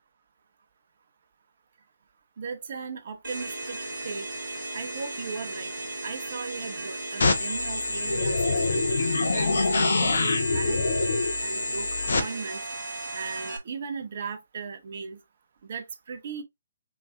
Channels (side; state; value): both; inverted; correlation -0.86